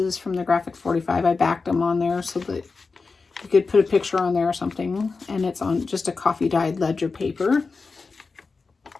from the Graphic 45. I backed them on there so that you could put a picture on there or something. And it's on just a coffee dyed ledger paper.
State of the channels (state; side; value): quieter; right; 4.3 dB